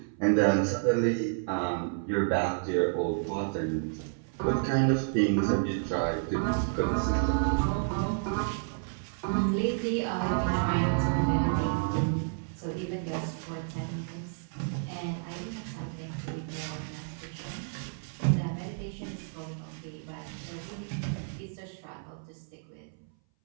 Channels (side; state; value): left; silent; 57 dB below the other